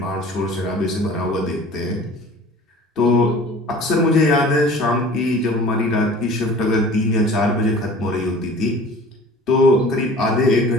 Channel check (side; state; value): both; normal; correlation 0.45